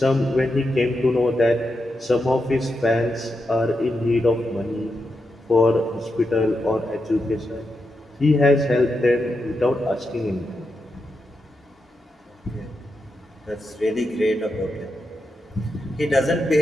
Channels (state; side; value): normal; both; correlation 0.86